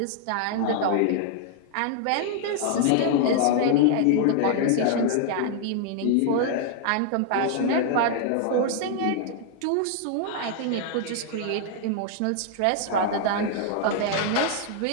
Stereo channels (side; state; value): both; different; correlation 0.00